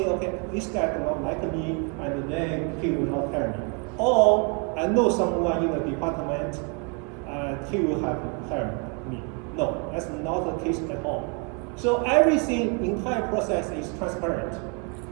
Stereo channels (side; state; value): left; quieter; 35.1 dB